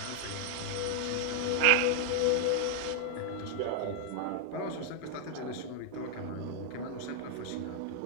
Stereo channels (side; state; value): both; different; correlation 0.00